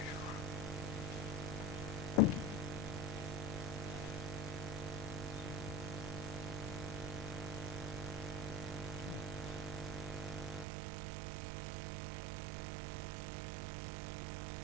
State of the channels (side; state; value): left; drops out; at 10.7 s